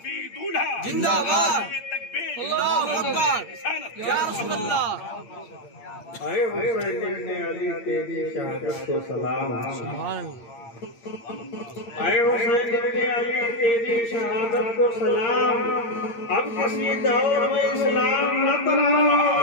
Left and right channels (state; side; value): late; right; 8.7 ms